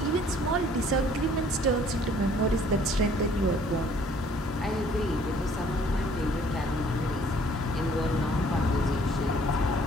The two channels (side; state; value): both; normal; correlation 0.58